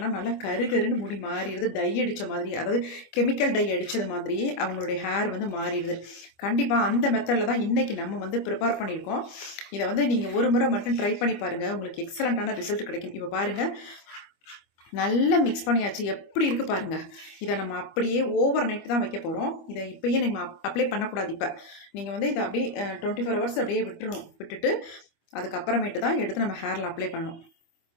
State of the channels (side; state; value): right; late; 25 ms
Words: நல்லா கருகருன்னு முடி மாறிடுது. டை அடித்த மாதிரி, அதாவது கெமிக்கல் டை அடித்தது மாதிரி அவங்களுடைய ஹேர் வந்து மாறிடுது. கண்டிப்பாக அந்த மெத்தடில் தான் இன்றைக்கி நம்ம வந்து ப்ரிப்பேர் பண்ணியிருக்கோம். இதை வந்து நீங்கள் ஒரு முறை மட்டும் ட்ரை பண்ணி பாருங்கள், உங்களுக்கு எக்ஸலண்ட்டான ரிசல்ட் கிடைக்கும். இப்போ பாருங்கள், நல்லா மிக்ஸ் பண்ணியாச்சு. எப்படி இருக்குது பாருங்கள். இதை நம்ம அப்படியே ஓவர் நைட் தான் வைக்க போகிறோம். இதை இப்போயே நம்ம அப்ளை பண்ணக்கூடாது. இப்போ நீங்கள் வந்து இதை அப்படியே 24 ஹவர்ஸ் அப்படியே விட்டுட்டு அதுக்கப்புறமேட்டு தான் எடுத்து நம்ம ஹேரில் அப்ளை பண்ணணும்.